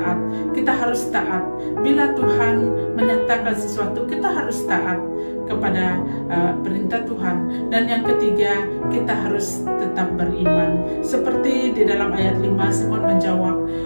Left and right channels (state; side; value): inverted; both; correlation -1.00